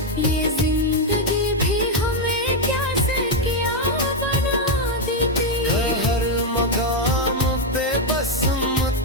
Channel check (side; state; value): both; normal; correlation 0.03